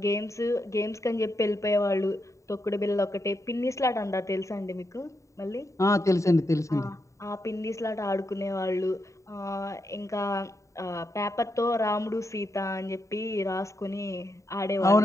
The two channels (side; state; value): right; late; 0.15 ms